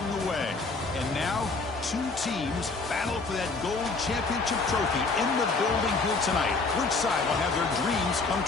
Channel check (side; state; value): right; quieter; 3.9 dB